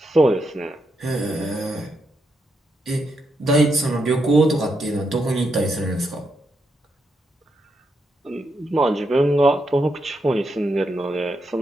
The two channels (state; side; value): normal; both; correlation 0.82